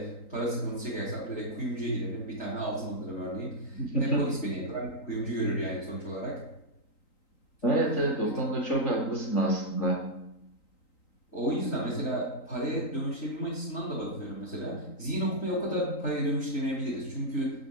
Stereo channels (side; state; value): right; late; 3.9 ms